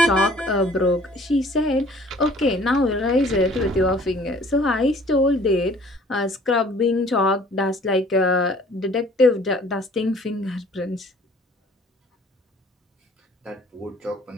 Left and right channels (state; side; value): normal; both; correlation 0.54